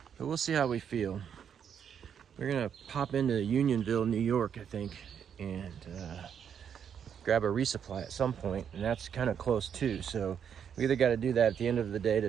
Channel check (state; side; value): quieter; left; 8.0 dB